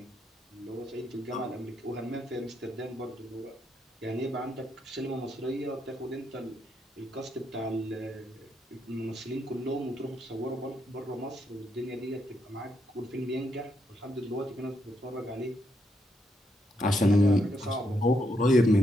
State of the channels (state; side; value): normal; both; correlation 0.78